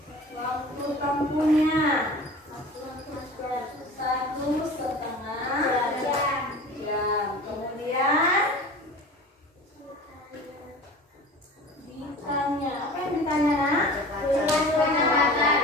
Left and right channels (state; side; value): normal; both; correlation 0.38